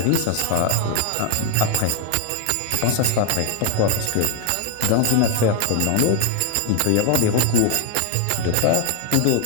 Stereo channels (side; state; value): both; different; correlation 0.01